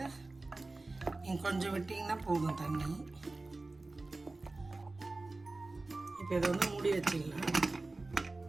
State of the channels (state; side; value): quieter; left; 3.2 dB